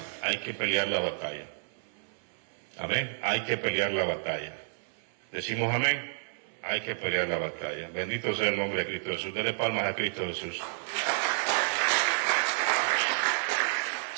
hay que pelear la batalla. Amén. Hay que pelear la batalla. Decimos amén, hay que pelear la batalla. Bendito sea el nombre de Cristo Jesús. Dele palmas a Cristo Jesús.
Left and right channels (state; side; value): silent; left; 58 dB below the other